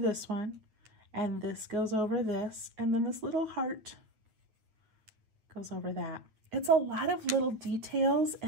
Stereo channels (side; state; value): left; late; 9.1 ms